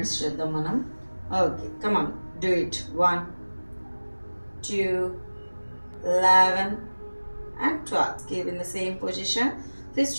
చేద్దాం మనం. Okay come on do it. 1 2 11 and 12. Keep in the same position. Twist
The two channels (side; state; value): both; inverted; correlation -1.00